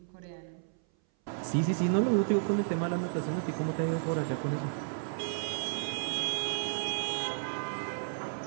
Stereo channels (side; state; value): left; silent; 56 dB below the other